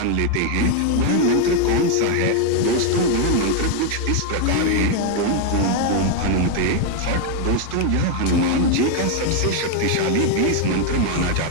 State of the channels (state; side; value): different; both; correlation 0.01